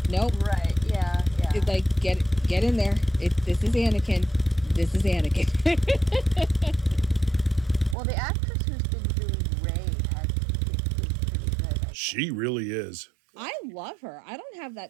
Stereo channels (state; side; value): drops out; left; at 8.0 s